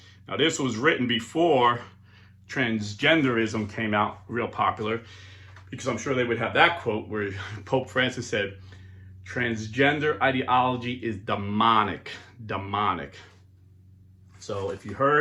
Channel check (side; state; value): both; identical; correlation 1.00